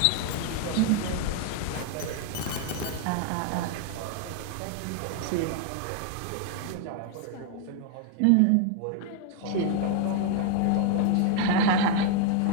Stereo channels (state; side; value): different; both; correlation 0.00